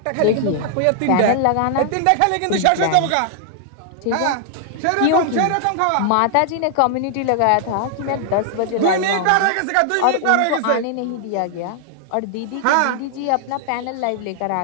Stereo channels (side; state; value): both; different; correlation 0.00